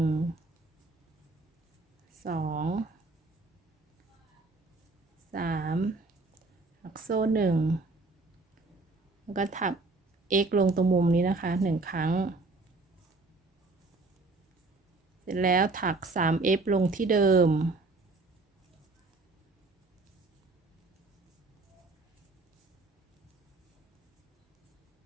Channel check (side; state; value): left; quieter; 3.4 dB